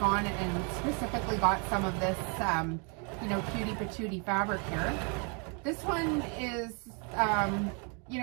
and specifically bought some of this, you know, cutie patootie fabric here. This one is, you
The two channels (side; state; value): left; quieter; 36.3 dB